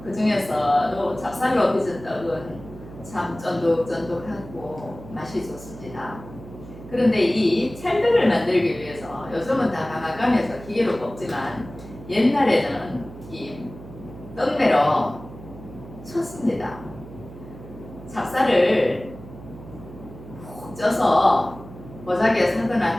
그 중에서도 찹쌀로 빚은 떡은 참 쫀득쫀득하고 맛이 좋습니다. 그런데 이 찰떡을 만들기 위해서 요즘은 다 방앗간에서 기계로 뽑지만 옛날에는 이 떡매로 쳤습니다. 찹쌀을 푹 쪄서 보자기에 사거나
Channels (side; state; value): right; noise; hum, 16 dB below the sound